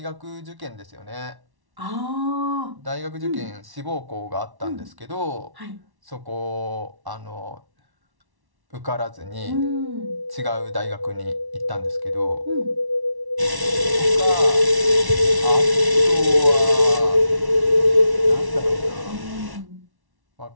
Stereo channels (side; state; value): left; late; 1.1 ms